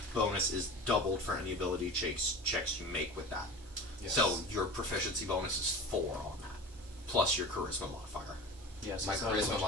bonus is doubled for any ability checks you make with that. Yes. So your proficiency bonus is 4 on that, plus your charisma modifier. yes, My it's not as charisma much as-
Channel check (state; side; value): normal; both; correlation 0.34